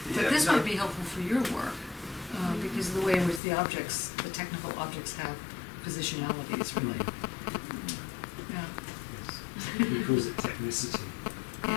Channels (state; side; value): drops out; right; at 3.4 s